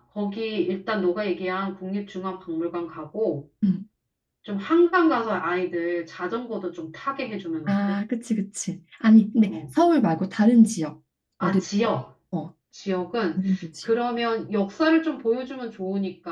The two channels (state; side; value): identical; both; correlation 1.00